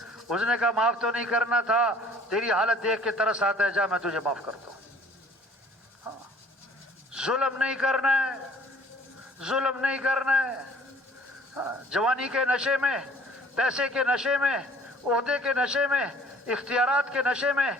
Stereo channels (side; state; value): both; normal; correlation 0.53